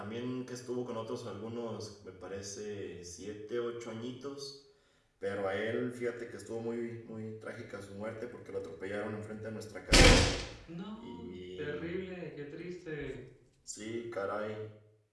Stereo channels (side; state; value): both; identical; correlation 1.00